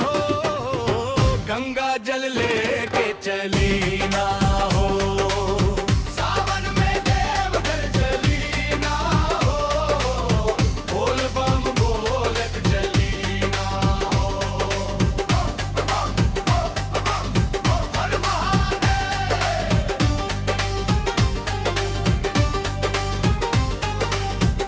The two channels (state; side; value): identical; both; correlation 1.00